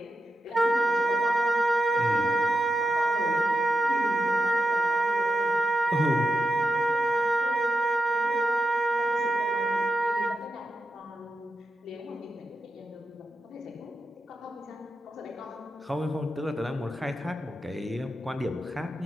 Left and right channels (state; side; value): normal; both; correlation 0.89